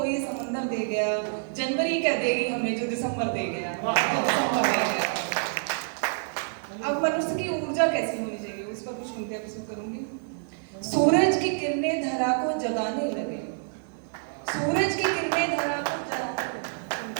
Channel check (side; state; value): left; silent; 60 dB below the other